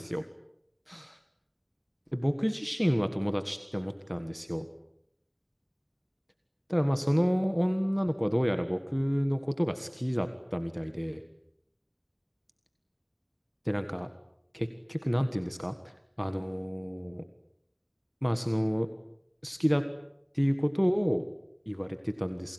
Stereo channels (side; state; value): both; identical; correlation 1.00